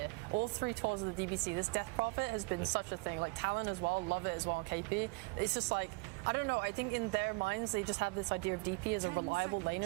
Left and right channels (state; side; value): quieter; left; 27.5 dB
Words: all 3 tours of the DBC, this Death Prophet has been such a thing. Like Talon as well, love it as well on KP. It's just like, I don't know, I think in their minds they just have this idea of DP as a reliable